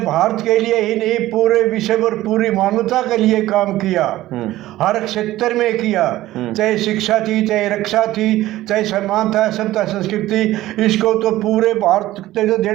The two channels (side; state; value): left; quieter; 15.6 dB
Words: भारत के लिए ही नहीं पूरे विश्व और पूरी मानवता के लिए काम किया, हर क्षेत्र में किया, चाहे शिक्षा थी, चाहे रक्षा थी, चाहे सम्मान था, सभ्यता संस्कृति, इसको तो पूरे भारत को जो